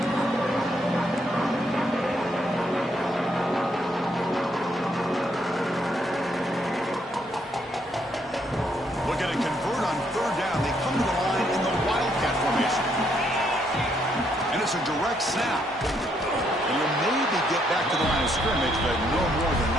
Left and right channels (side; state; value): both; normal; correlation 0.73